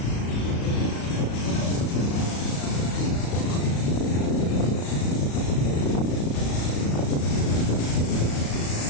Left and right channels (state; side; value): late; right; 35 ms